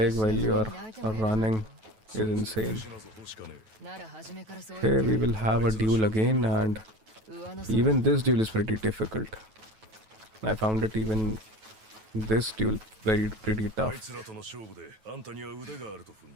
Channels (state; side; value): late; left; 9.2 ms